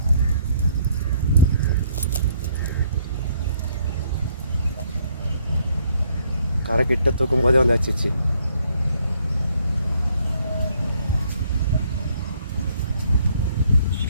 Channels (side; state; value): both; inverted; correlation -0.67